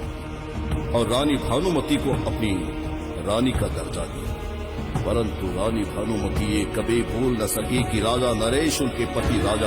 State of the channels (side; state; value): both; identical; correlation 1.00